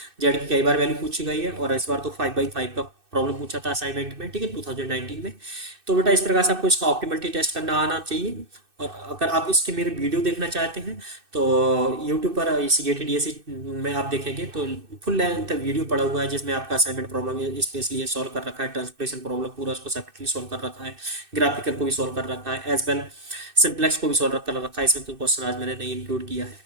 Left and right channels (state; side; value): late; left; 2.6 ms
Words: Z की कई बार वैल्यू पूछी गई है, और इस बार तो 5/5 का प्रॉब्लम पूछा था असाइनमेंट में, ठीक है, 2019 में। तो बेटा इस प्रकार से आपको इसका ऑप्टिमलिटी टेस्ट करना आना चाहिए। और अगर आप इसके मेरे वीडियो देखना चाहते हैं तो यूट्यूब पर इसी गेटेड डीएससी में आप देखेंगे तो फुल लेंथ वीडियो पड़ा हुआ है, जिसमें आपका असाइनमेंट प्रॉब्लम स्पेशली ये सॉल्व कर रखा है, ट्रांसलेशन प्रॉब्लम पूरा उसको सेपरेटली सॉल्व कर रखा है, ग्राफिकल को भी सॉल्व कर रखा है, एज वेल सिंप्लेक्स को भी सॉल्व कर रखा है। इसमें कोई क्वेश्चन आज मैंने नहीं इंक्लूड किया है,